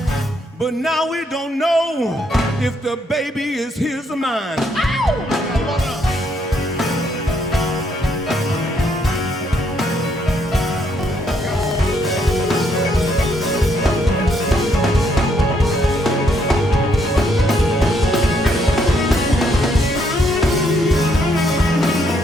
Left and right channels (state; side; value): normal; both; correlation 0.72